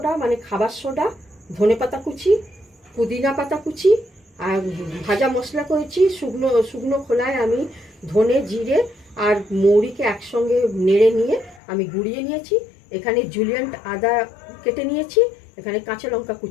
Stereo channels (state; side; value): drops out; right; at 11.6 s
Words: মানে খাবার সোডা, ধনেপাতা কুচি, পুদিনা পাতা কুচি, আর ভাজা মশলা করেছি। শুকনো খোলায় আমি ধনে, জিরে আর মৌরিকে একসঙ্গে নেড়ে নিয়ে আমি গুঁড়িয়ে নিয়েছি। এখানে জুলিয়েন্ট আদা কেটে নিয়েছি, এখানে কাঁচা লঙ্কা